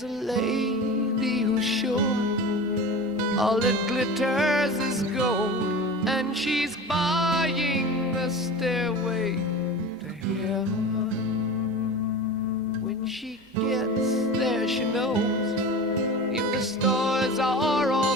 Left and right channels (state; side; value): normal; both; correlation 0.33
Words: a lady who's sure all that glitters is gold, and she's buying a stairway to heaven. When she gets there, she knows if the stores are all